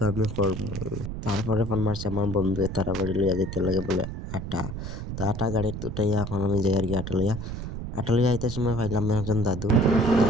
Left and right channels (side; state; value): right; noise; rumble, 7 dB below the sound